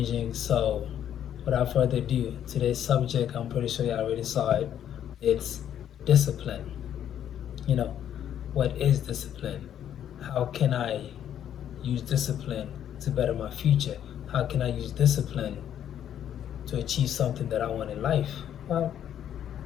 So, without further ado, today's subject, I'm pretty sure you already saw it. It's discipline. You know, what is discipline? How can I use discipline to better my future? How can I use discipline to achieve something that I want in life? Well,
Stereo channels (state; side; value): quieter; right; 10.1 dB